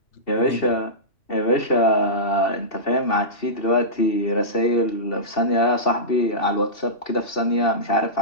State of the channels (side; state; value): right; late; 2.7 ms